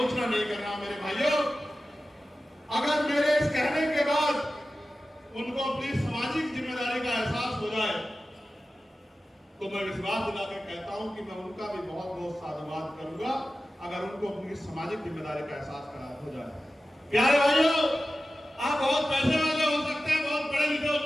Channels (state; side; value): normal; both; correlation 0.94